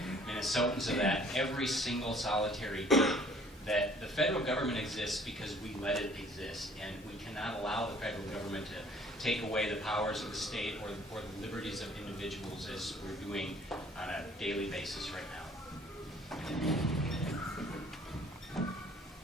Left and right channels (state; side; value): normal; both; correlation 0.56